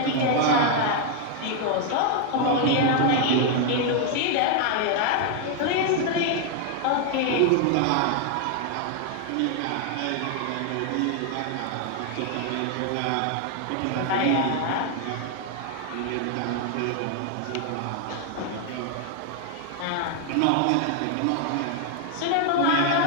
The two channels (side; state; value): both; different; correlation 0.00